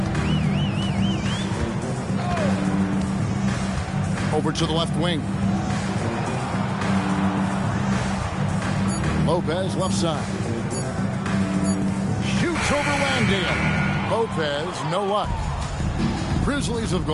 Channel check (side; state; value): both; identical; correlation 1.00